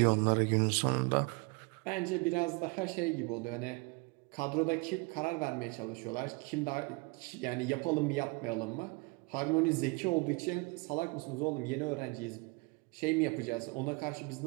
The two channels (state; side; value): quieter; left; 29.0 dB